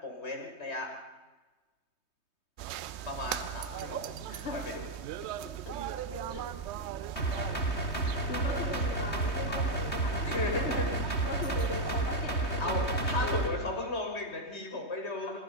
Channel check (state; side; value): late; right; 3.2 ms